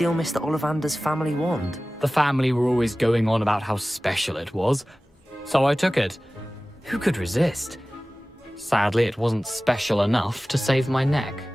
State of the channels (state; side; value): normal; both; correlation 0.97